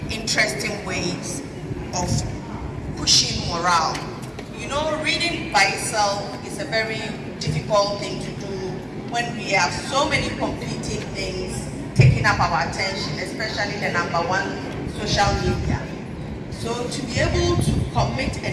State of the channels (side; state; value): both; identical; correlation 1.00